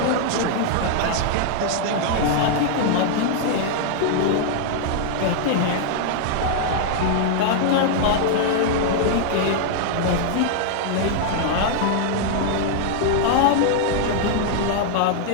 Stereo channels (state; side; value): different; both; correlation -0.01